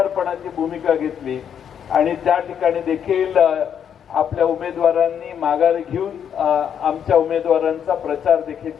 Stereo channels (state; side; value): quieter; right; 8.5 dB